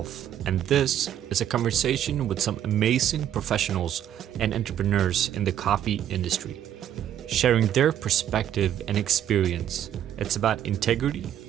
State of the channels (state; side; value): quieter; left; 10.6 dB